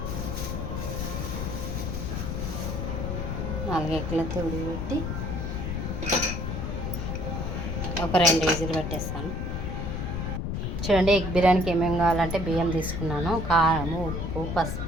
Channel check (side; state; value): left; noise; rumble, 3 dB below the sound